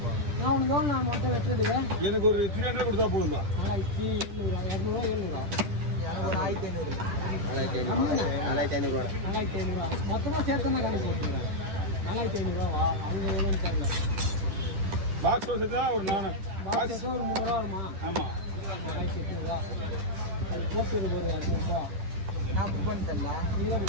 நான் உனக்கு நான் மட்டும் வெட்டுறதுக்கு எனக்கு ஒரு 300 கொடுத்தா போதும்பா 4500 ரூபா மொத்தமா சேர்த்தா கணக்கு போட்டுக்கிறேன் 4500 ரூபா அவங்க எவ்வளோன்னு தெரியல பாக்ஸ் வச்சுதான் ஒரு 4 பாக்ஸ் ஒரு 300 ரூபா வருமா ஆமா 4800 ரூபா அது போட்டு ஒரு 200 ரூபா நான் புக் பண்ணி தரலாம் நீ தான்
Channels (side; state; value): left; late; 10 ms